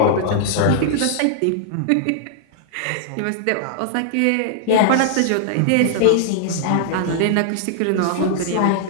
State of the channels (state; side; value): different; both; correlation -0.01